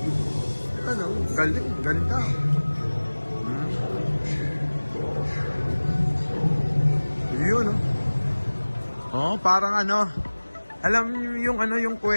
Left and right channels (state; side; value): inverted; both; correlation -1.00